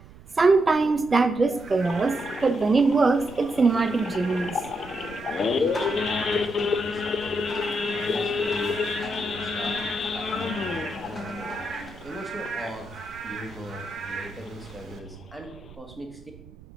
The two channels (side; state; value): right; noise; rumble, 20 dB below the sound